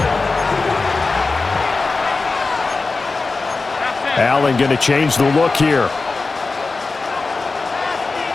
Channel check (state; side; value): quieter; right; 3.9 dB